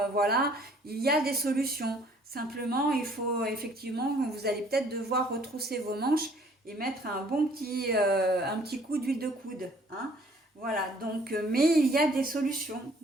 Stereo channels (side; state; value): both; normal; correlation 0.58